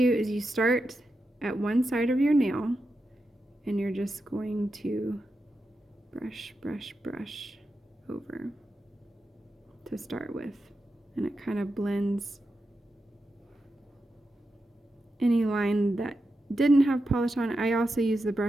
is you start at one side of your nail and you're just going to brush, brush, brush over to start with. And it kind of blends any line that didn't have polish on it. I also use the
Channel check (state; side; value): normal; both; correlation 0.88